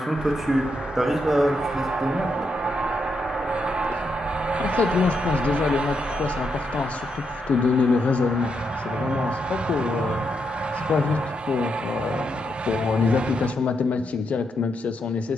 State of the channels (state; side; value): normal; both; correlation 0.81